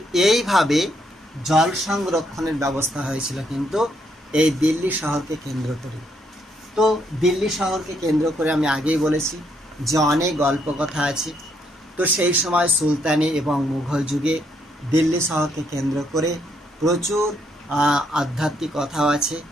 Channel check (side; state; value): both; normal; correlation 0.74